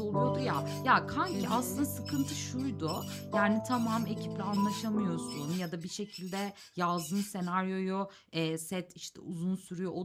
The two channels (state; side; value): identical; both; correlation 1.00